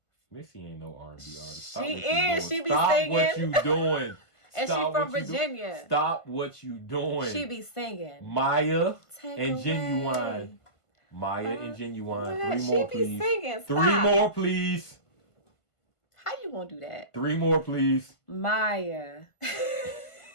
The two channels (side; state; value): right; late; 1.5 ms